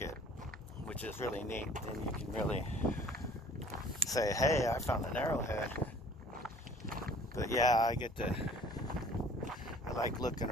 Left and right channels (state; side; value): normal; both; correlation 0.52